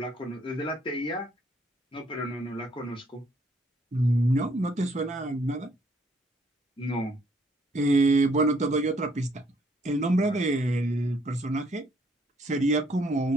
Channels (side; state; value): both; normal; correlation 0.67